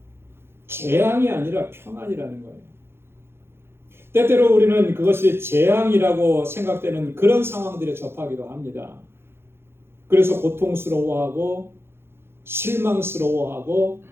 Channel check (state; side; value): late; left; 0.11 ms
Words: 재앙이 아니라 평안이라는 거예요. 때때로 우리는 그것이 재앙이라고 생각되는 그런 상황들에 접하기도 합니다. 그래서 고통스러워하고 실망스러워하고